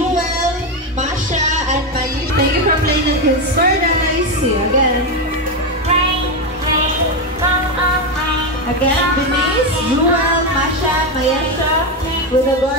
Masha, and Mayi. Thank you for playing at Kids Paradise. See you again. Again, Denise, Jewel, Masha, Mayesha, with the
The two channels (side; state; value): both; normal; correlation 0.10